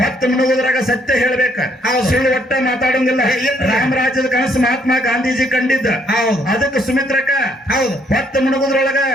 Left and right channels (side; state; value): both; normal; correlation 0.68